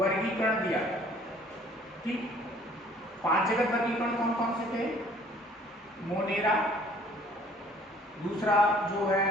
दिया। ठीक, 5 जगत वर्गीकरण कौन कौन से थे? मोनेरा, दूसरा जो है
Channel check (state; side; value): normal; both; correlation 0.56